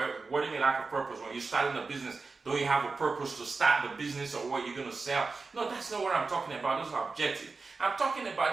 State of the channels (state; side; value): quieter; left; 4.2 dB